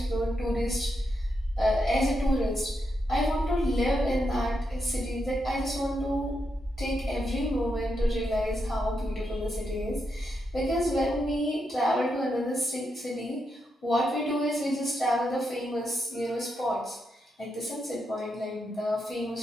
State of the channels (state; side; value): normal; both; correlation 0.83